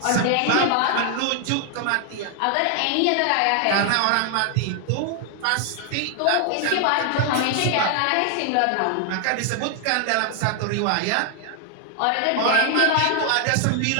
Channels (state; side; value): different; both; correlation 0.00